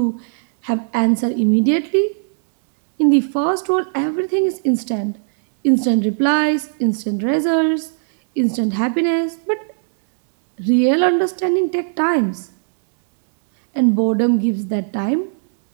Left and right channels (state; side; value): silent; left; 67 dB below the other